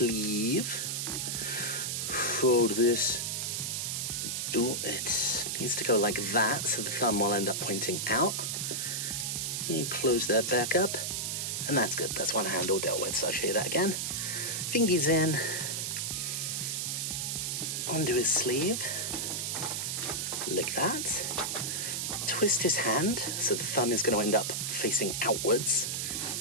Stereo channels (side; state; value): right; noise; hiss, 1 dB below the sound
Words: Fold this. It needs to go like that, so the thumb will end up pointing out. You close that back up. And that's good. That's one hand all dealt with, so I'll show you that again. Fingies in. Onto his sleeve. Like that. Twist his hand, so the thumb is going to end up facing outwards.